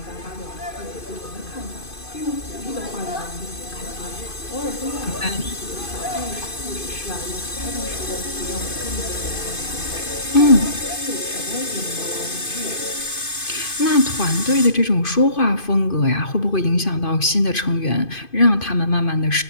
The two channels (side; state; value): right; late; 2.5 ms